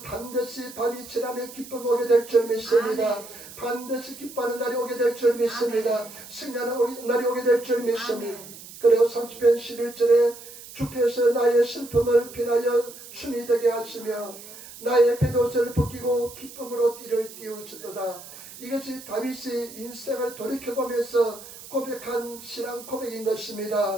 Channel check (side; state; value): right; noise; hiss, 16 dB below the sound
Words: 반드시 밤이 지나면 기쁨이 오게 될 줄 믿습니다. 반드시 기뻐하는 날이 오게 될 줄 믿습니다. 승리하는 날이 오게 될 줄 믿습니다. 그리고 30편 11절에 주께서 나의 슬픔을 비나여 춤이 되게 하시며 나의 뱃옷을 벗기고 기쁨으로 띠를 띄우시도다. 이것이 다윗이 인생을 돌이켜보면서 고백한 신앙 고백인